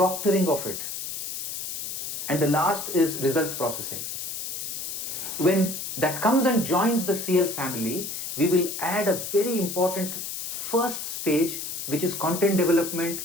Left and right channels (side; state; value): left; noise; hiss, 5 dB below the sound